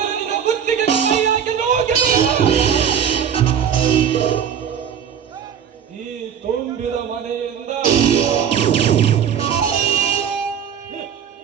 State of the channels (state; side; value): quieter; left; 8.3 dB